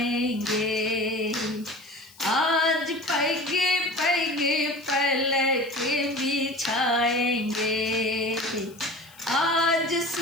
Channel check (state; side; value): noise; left; hiss, 25 dB below the sound